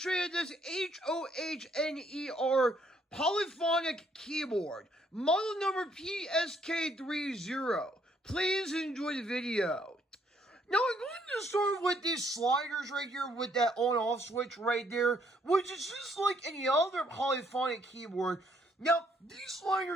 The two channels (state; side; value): normal; both; correlation 0.68